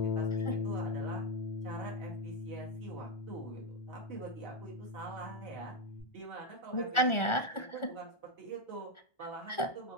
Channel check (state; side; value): late; right; 1.4 ms